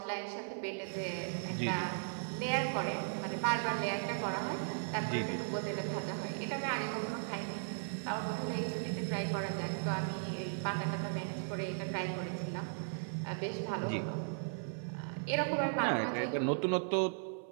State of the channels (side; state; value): left; silent; 53 dB below the other